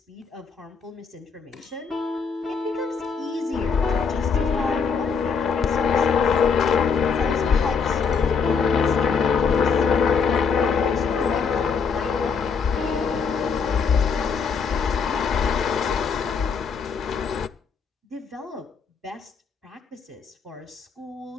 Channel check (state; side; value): quieter; right; 5.7 dB